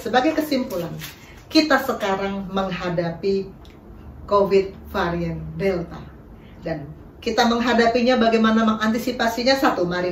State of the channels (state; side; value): identical; both; correlation 1.00